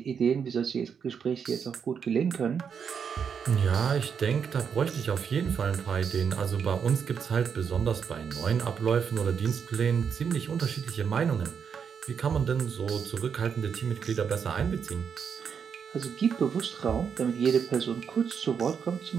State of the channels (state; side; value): quieter; left; 6.9 dB